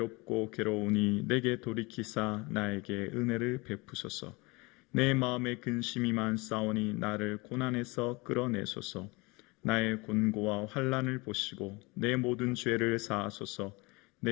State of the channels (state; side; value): quieter; right; 25.6 dB